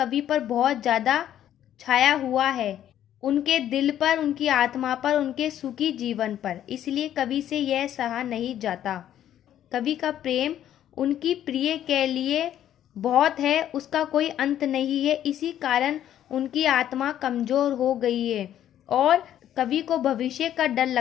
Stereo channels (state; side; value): quieter; right; 11.2 dB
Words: पर बहुत ज़्यादा छाया हुआ है, उनके दिल पर, उनकी आत्मा पर, उनके सुखी जीवन पर, इसलिए कवि से यह सहा नहीं जाता। कवि का प्रेम उनकी प्रिय के लिए बहुत है, उसका कोई अंत नहीं है, इसी कारण उनकी आत्मा कमजोर हो गई है और कवि को भविष्य का डर